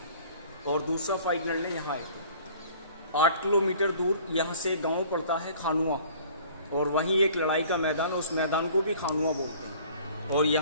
और दूसरा फाइट लड़ने यहाँ आए थे। 8 किलोमीटर दूर यहाँ से गांव पड़ता है खानुआ। और वहीं एक लड़ाई का मैदान, उस मैदान को भी खानुआ बोलते हैं। और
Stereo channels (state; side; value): inverted; both; correlation -0.51